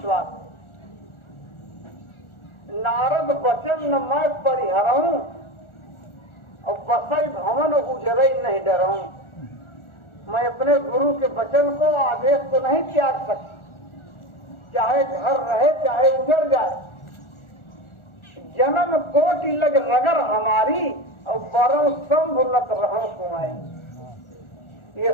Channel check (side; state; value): right; late; 1.4 ms